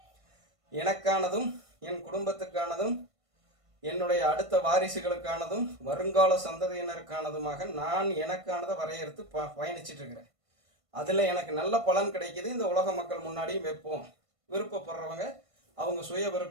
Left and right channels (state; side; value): late; left; 1.5 ms